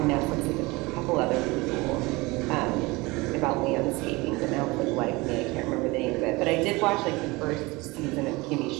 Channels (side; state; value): left; quieter; 23.2 dB